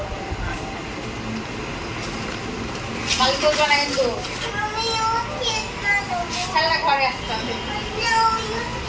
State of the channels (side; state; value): both; identical; correlation 1.00